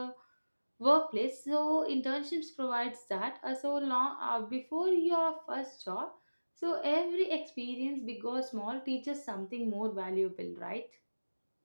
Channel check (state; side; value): inverted; both; correlation -1.00